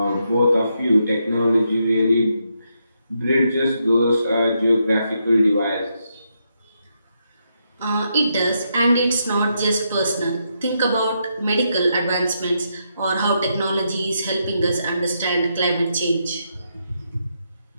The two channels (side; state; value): both; inverted; correlation -0.81